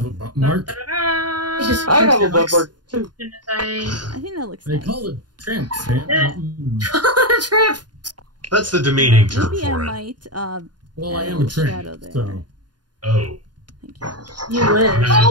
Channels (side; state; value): left; late; 0.70 ms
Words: a butt mark. I have a butt mark too. I think that looks They nice. call it tramp Tramp. That's the demeaning term Maybe for I it. might well, I add am a a tramp, shadow there. so. Oh. You wish.